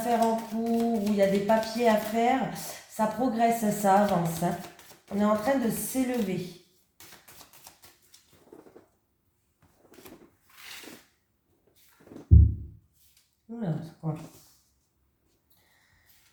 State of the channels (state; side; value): identical; both; correlation 1.00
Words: en cours où il y a des papiers à faire, ça progresse, ça avance, hein. On est en train de s'élever. Oula, c'est quoi ?